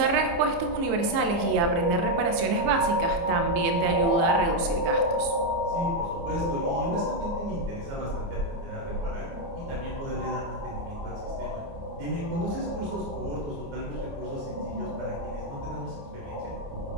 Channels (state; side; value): late; left; 29 ms